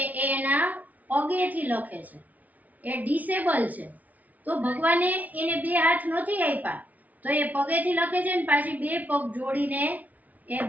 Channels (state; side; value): late; left; 0.075 ms